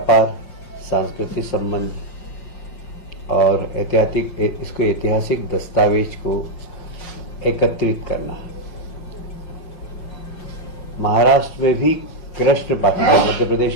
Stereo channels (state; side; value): late; right; 5.6 ms